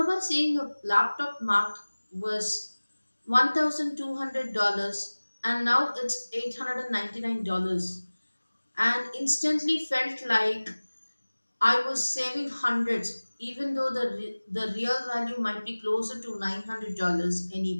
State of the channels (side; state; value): both; inverted; correlation -1.00